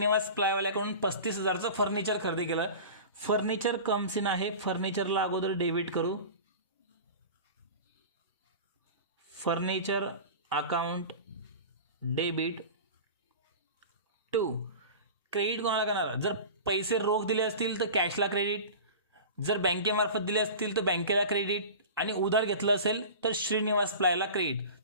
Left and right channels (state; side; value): inverted; both; correlation -0.34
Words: प्लायवाल्याकडून 35,000चं फर्निचर खरेदी केलं. फर्निचर कम्स इन आहे. फर्निचरला अगोदर डेबिट करू. Furniture account debit to credit कोणाला करणार? जर पैसे रोख दिले असतील तर कॅशला क्रेडिट, जर बँकेमार्फत दिले असतील तर बँकेला क्रेडिट, आणि उधार घेतलं असेल तर श्रीनिवास प्लायला क्रेडिट.